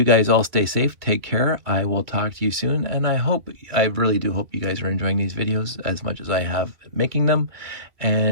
guys all stay safe. Take care. I will talk to you soon. And I really do hope you guys are enjoying these videos as much as I have making them.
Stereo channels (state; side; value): late; left; 2.2 ms